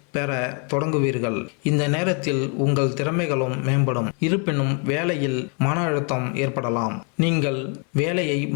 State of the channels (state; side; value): quieter; right; 38.2 dB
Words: பெற தொடங்குவீர்கள். இந்த நேரத்தில் உங்கள் திறமைகளும் மேம்படும். இருப்பினும் வேலையில் மன அழுத்தம் ஏற்படலாம். நீங்கள் வேலையை